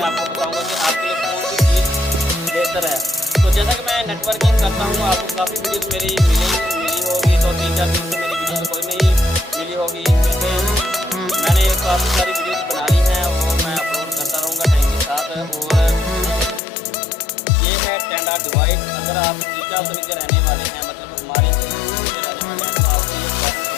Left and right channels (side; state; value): right; drops out; at 16.6 s